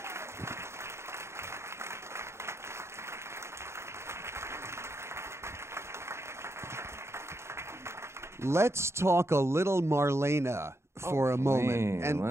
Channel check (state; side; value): late; left; 0.13 ms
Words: Let's talk a little Marlene for a moment.